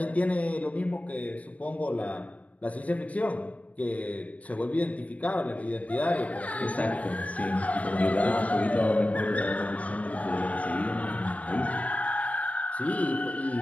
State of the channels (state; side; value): late; right; 0.067 ms